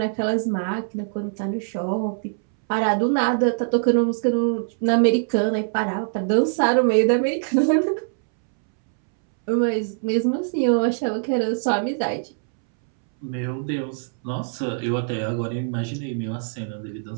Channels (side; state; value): left; silent; 63 dB below the other